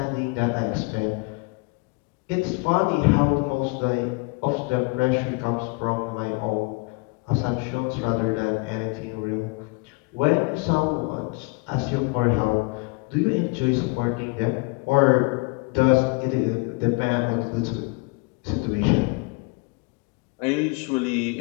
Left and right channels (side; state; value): right; quieter; 29.2 dB